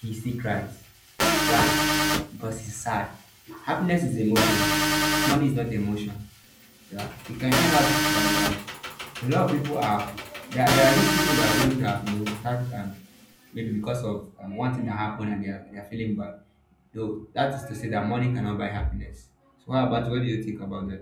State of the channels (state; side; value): identical; both; correlation 1.00